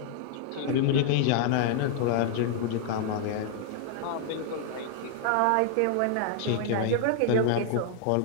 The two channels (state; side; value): different; both; correlation 0.00